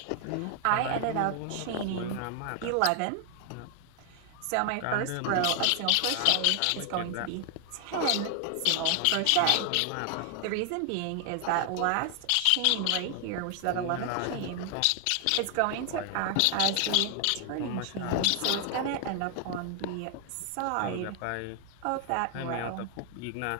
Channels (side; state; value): both; different; correlation 0.00